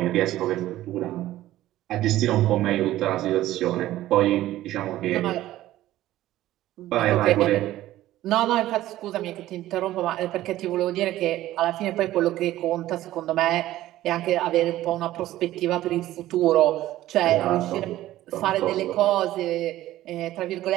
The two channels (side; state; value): left; quieter; 14.8 dB